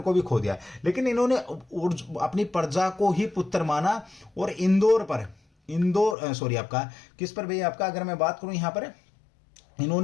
भी खो दिया, लेकिन इन्होंने अपनी प्रजा को ही पुत्र माना। और आपका किस पर भाई आपका, अगर मैं बात करूं यहां पर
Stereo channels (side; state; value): right; drops out; at 6.2 s